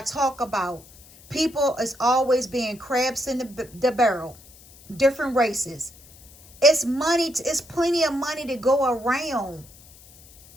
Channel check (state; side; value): noise; left; hiss, 23 dB below the sound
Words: talk about, people is always being crabs in the barrel. Different races. It's money. It's plenty of money to go around.